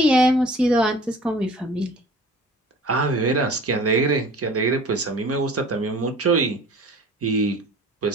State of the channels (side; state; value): both; normal; correlation 0.45